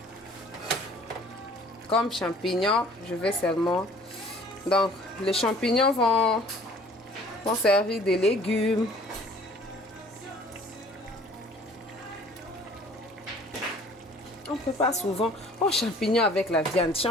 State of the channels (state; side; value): normal; both; correlation 0.52